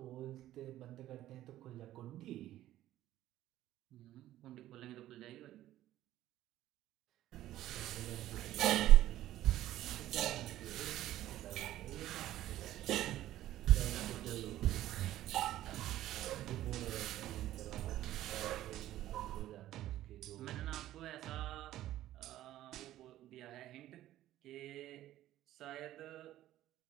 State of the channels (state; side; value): quieter; left; 13.9 dB